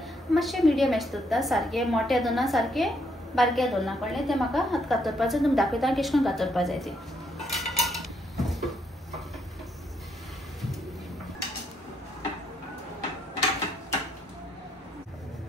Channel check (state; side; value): normal; both; correlation 0.74